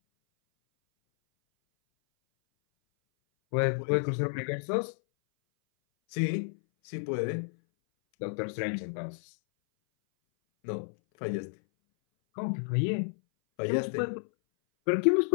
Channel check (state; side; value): silent; right; 58 dB below the other